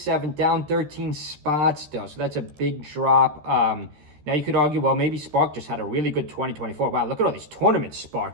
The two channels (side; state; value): left; late; 13 ms